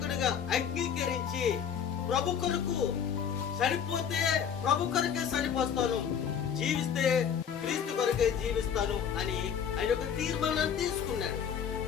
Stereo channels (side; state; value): right; quieter; 7.9 dB